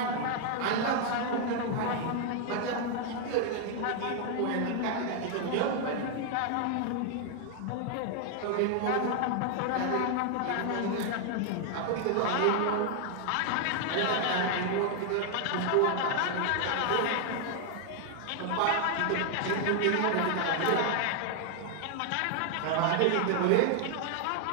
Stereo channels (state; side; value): different; both; correlation 0.00